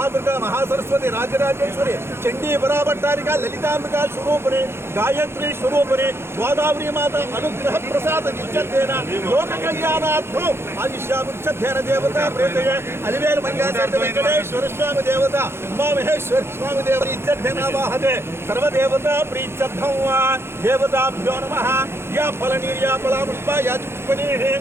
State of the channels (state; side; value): late; left; 0.12 ms